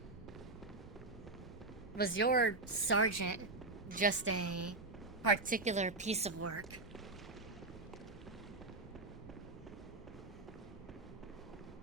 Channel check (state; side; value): quieter; left; 3.2 dB